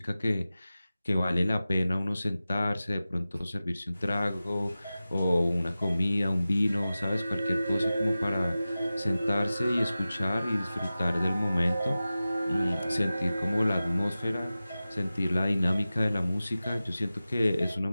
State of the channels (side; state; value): both; inverted; correlation -0.95